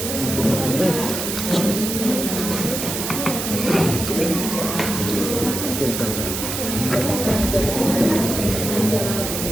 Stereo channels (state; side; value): noise; right; hiss, 4 dB below the sound